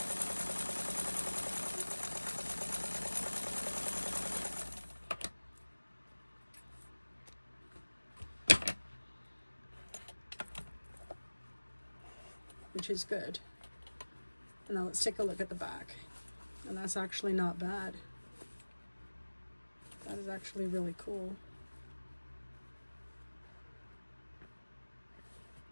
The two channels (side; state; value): both; inverted; correlation -1.00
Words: Which is good. And now let's take a look at the back. And that's actually not bad. That is actually really cool.